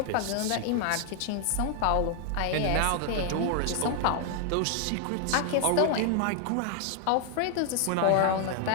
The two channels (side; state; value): both; different; correlation 0.00